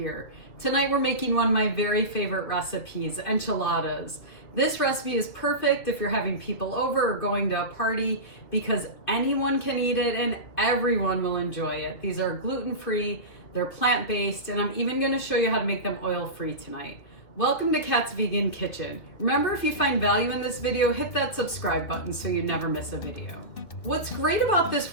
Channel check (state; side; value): late; right; 2.8 ms